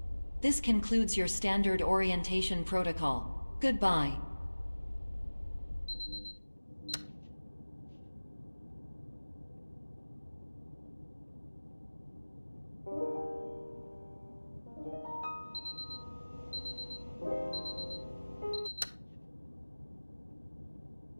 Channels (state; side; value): inverted; both; correlation -1.00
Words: This concludes your standard orientation protocol. Goodbye.